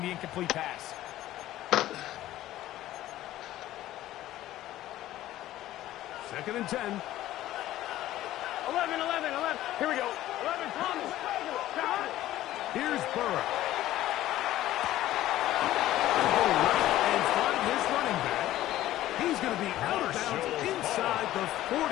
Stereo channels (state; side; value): quieter; right; 14.4 dB